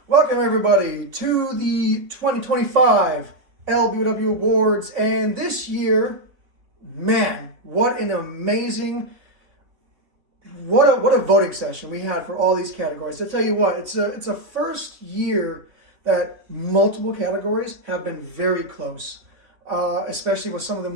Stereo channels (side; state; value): left; late; 3.5 ms